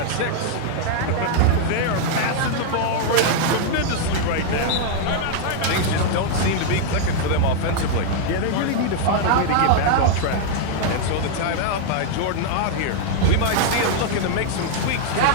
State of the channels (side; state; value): both; different; correlation 0.00